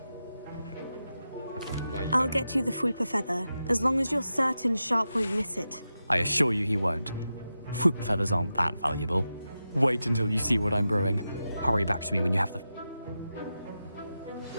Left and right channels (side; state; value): both; inverted; correlation -0.91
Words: I'll get you the Fwooper feather, as long as you're certain Sharp won't miss it. I assure you he won't. Fwooper feathers aren't that valuable. Wait until you see what I'm brewing. Hurry back to me when you have the...